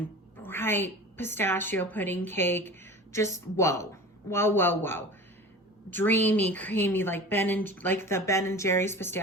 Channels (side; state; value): both; normal; correlation 0.37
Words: bright pistachio pudding cake. Just whoa, whoa, whoa, whoa. Dreamy, creamy, like the Ben and Jerry's